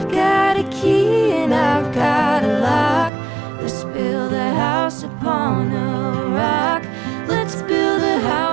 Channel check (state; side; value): drops out; left; at 3.1 s